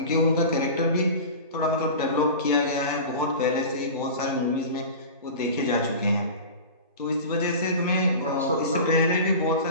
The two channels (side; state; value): both; inverted; correlation -0.33